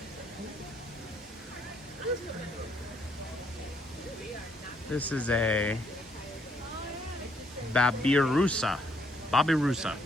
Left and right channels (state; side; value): normal; both; correlation 0.70